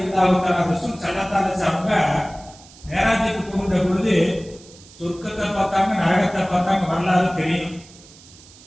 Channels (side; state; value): right; noise; hiss, 22 dB below the sound